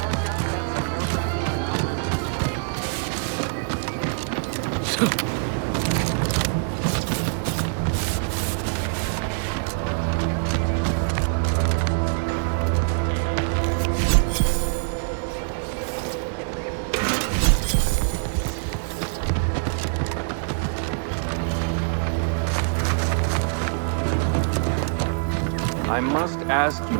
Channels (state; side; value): silent; left; digital silence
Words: I must ask